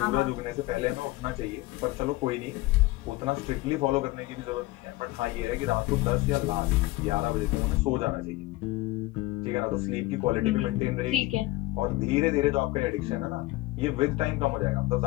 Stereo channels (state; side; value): quieter; right; 19.3 dB